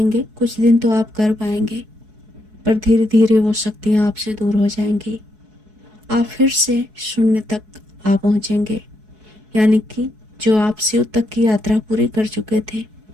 कुछ दिन तो आप कर पाएंगे, पर धीरे धीरे वो शक्तियाँ आपसे दूर हो जाएंगी। आप फिर से शून्य तक आ पहुँचेंगे, यानी कि जो आप शिव तक की यात्रा पूरी कर चुके थे,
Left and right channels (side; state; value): left; late; 4.7 ms